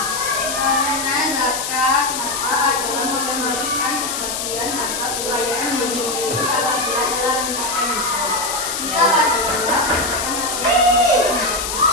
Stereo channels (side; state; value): left; noise; hiss, 3 dB below the sound